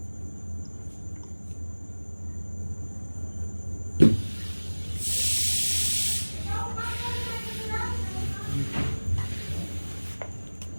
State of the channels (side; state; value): both; inverted; correlation -1.00